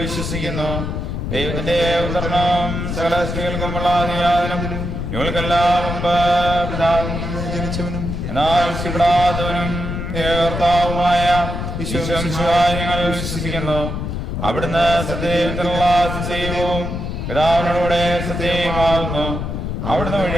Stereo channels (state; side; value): noise; left; rumble, 4 dB below the sound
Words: വിശ്വസിക്കുന്നു. ദൈവത്തിന്റെ ഉദാഹരണം സകല സ്ത്രീകൾക്കുമുള്ള അതിയാദനം ഞങ്ങൾക്കെല്ലാം പിതാവും ജനിച്ചവനും എന്നാൽ കർത്താവുമായ ഈശോമിശിഹായെ ഞങ്ങൾ വിശ്വസിക്കുന്നു. അവിടുന്ന് സത്യത്തിലുള്ള സത്യവും പിതാവിനോടുകൂടെ സത്യമാകുന്നു. അവിടുന്ന്